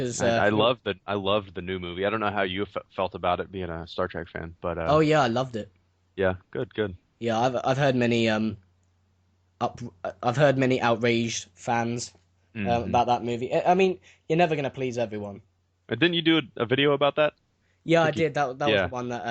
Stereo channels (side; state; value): both; identical; correlation 1.00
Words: I loved the new movie. I don't know how you felt about it being a Star Trek fan, but oh yeah, I loved it. yeah, good, good. Yeah, I've heard many up I've heard many outraged fans Hmm. about that movie. I mean, you're never gonna please everyone. Didn't you do a video about that? I Yeah, I think you. did. That was the Yeah, one